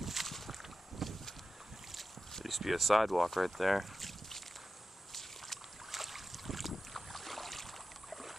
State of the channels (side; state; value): both; normal; correlation 0.93